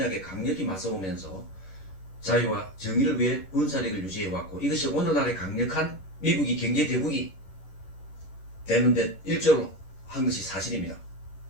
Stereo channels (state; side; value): late; right; 11 ms